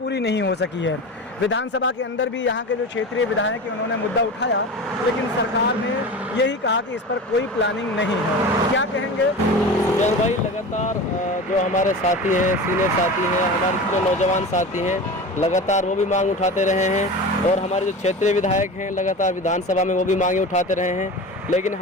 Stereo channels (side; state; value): both; normal; correlation 0.31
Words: नहीं हो सकी है। विधानसभा के अंदर भी यहाँ के जो क्षेत्रीय विधायक हैं उन्होंने मुद्दा उठाया, लेकिन सरकार ने यही कहा कि इस पर कोई प्लानिंग नहीं है। क्या कहेंगे जय भाई? लगातार जो हमारे साथी हैं, सीनियर साथी हैं, हमारे जो नौजवान साथी हैं, लगातार वो भी मांग उठाते रहे हैं। और हमारे जो क्षेत्रीय विधायक हैं लगातार विधानसभा में वो भी मांगे उठाते रहे हैं, लेकिन